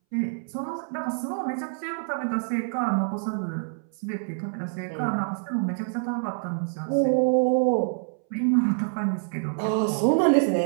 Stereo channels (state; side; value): silent; left; 61 dB below the other